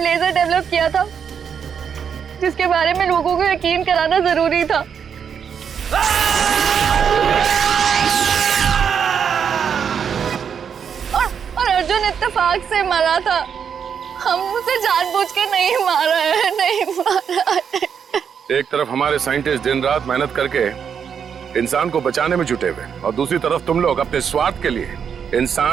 लेजर डेवलप किया था जिसके बारे में लोगों को यकीन कराना जरूरी था। और अर्जुन इत्तेफाक से मरा था। हम उसे जानबूझ के नहीं मारा है, नहीं मारा है। एक तरफ हमारे साइंटिस्ट दिन रात मेहनत करके इंसान को बचाने में जुटे हुए और दूसरी तरफ तुम लोग अपने स्वार्थ के लिए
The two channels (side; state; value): left; quieter; 7.3 dB